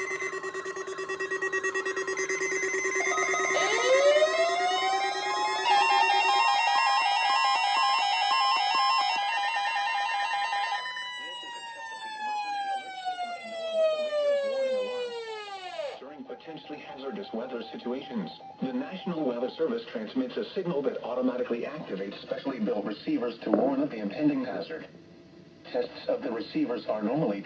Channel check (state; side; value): identical; both; correlation 1.00